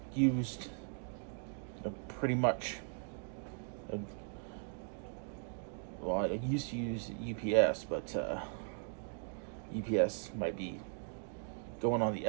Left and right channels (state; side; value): silent; left; 52 dB below the other